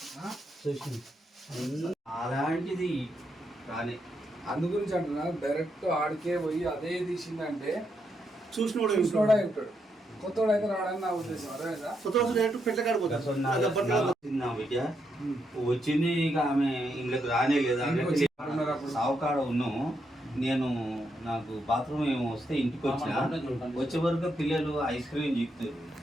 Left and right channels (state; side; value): normal; both; correlation 0.80